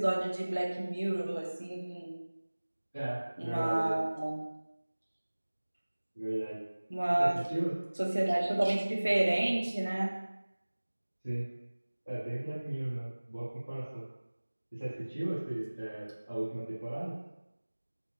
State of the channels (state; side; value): inverted; both; correlation -1.00